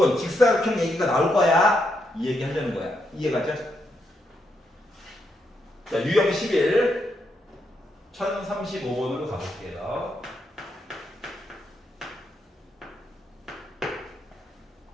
직사각형 얘기가 나올 거야. 이 얘기 하려는 거야. 이해 갔죠? 자, 유형 11 1035번으로 가볼게요.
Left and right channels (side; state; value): both; normal; correlation 0.80